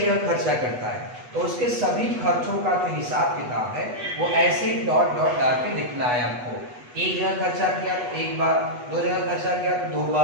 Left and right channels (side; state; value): left; late; 8.2 ms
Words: खर्चा करता है। तो उसके सभी खर्चों का जो हिसाब किताब है वो ऐसे ही डॉट डॉट डाल के लिखना है आपको। एक जगह खर्चा किया तो 1 बार, 2 जगह खर्चा किया तो 2